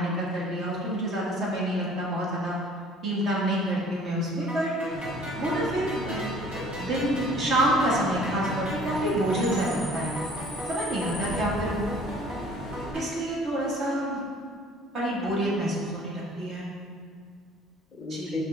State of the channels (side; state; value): both; normal; correlation 0.52